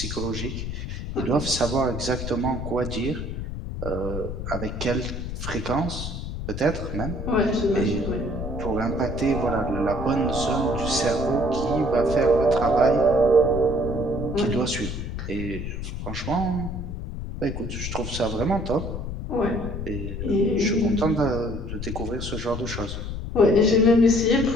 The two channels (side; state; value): left; noise; rumble, 6 dB below the sound